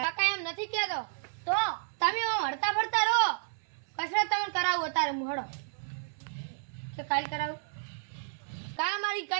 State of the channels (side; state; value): left; silent; 57 dB below the other